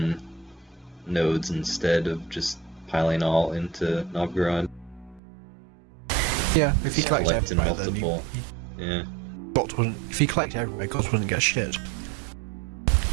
nodes instead of just piling all into Novgorod. Yeah, if he Just collects collect in everywhere, then multiple. Yeah. Guts wouldn't. If he collects everywhere, Guts wouldn't get shit.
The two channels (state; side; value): drops out; left; at 5.2 s